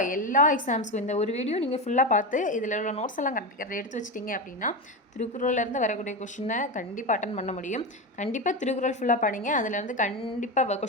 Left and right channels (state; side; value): normal; both; correlation 0.18